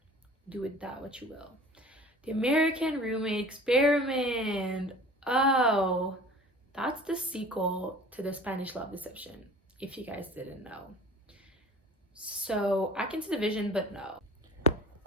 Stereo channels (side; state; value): both; normal; correlation 0.44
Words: do with that what you will. The American Roommate Experiment. Oh, that's the sequel to The Spanish Love Deception, if you guys didn't know. So I can see the vision, but no.